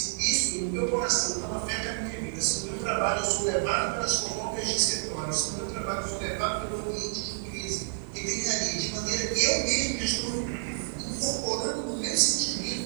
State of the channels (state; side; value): silent; left; digital silence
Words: isso no meu coração não afeta a minha vida, se no meu trabalho eu sou levado pelas fofocas de escritório, se no meu trabalho eu sou levado pelo ambiente de crise, que tem ali, de maneira que eu mesmo estou incorporando no meu